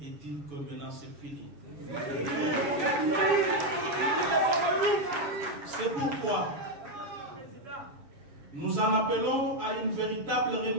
et dire que maintenant c'est fini. C'est pourquoi nous en appelons à une véritable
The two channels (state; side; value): late; left; 7.3 ms